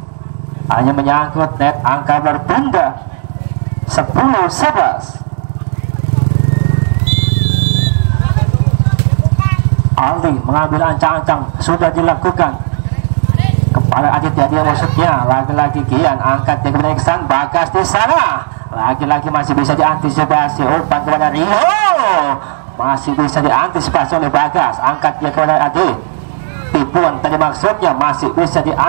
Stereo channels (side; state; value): left; silent; digital silence